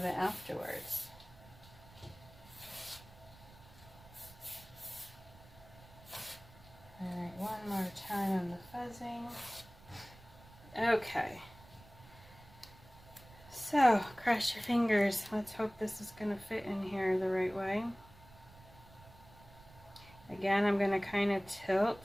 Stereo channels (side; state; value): right; noise; rumble, 21 dB below the sound